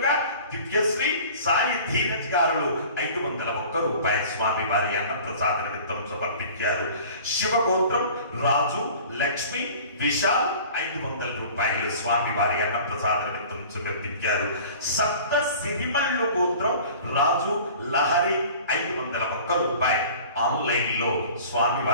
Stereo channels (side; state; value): both; inverted; correlation -0.44